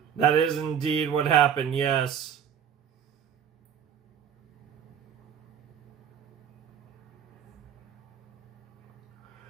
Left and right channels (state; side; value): quieter; left; 8.4 dB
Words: That is indeed what happened, yes.